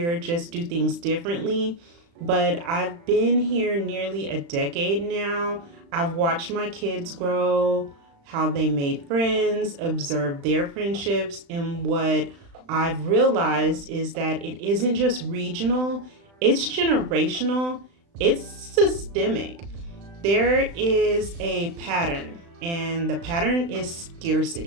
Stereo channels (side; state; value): left; late; 35 ms